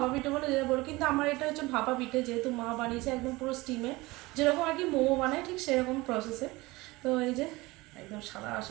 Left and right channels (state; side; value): quieter; left; 21.5 dB